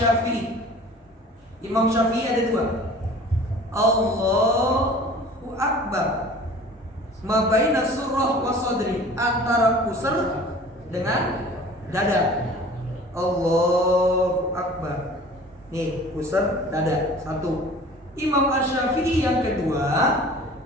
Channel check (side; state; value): both; normal; correlation 0.45